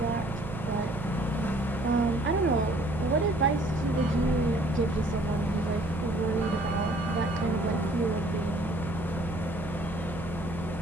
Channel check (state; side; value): noise; right; hum, 11 dB below the sound